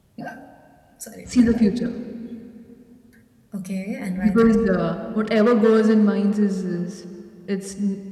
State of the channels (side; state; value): both; identical; correlation 1.00